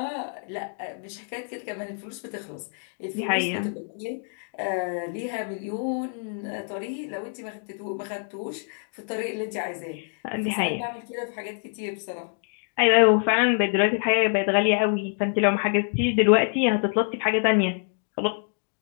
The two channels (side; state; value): right; silent; 61 dB below the other